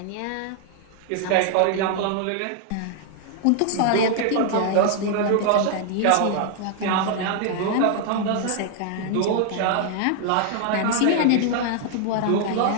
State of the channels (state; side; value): different; both; correlation 0.00